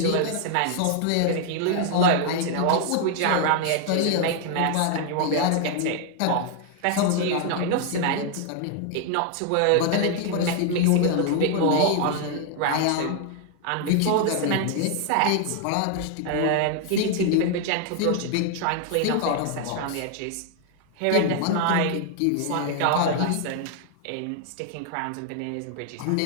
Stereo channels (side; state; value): both; different; correlation 0.00